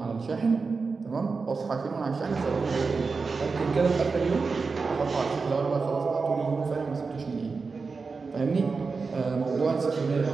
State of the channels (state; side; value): quieter; left; 4.5 dB